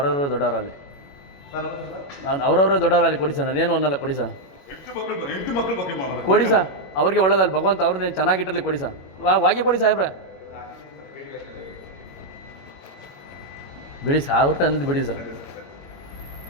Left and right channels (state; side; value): late; right; 21 ms